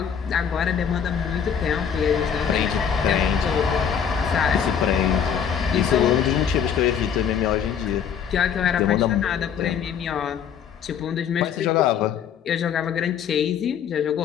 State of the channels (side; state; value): right; quieter; 7.9 dB